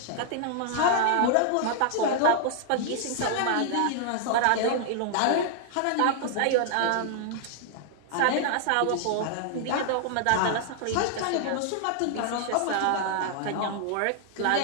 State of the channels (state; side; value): different; both; correlation 0.00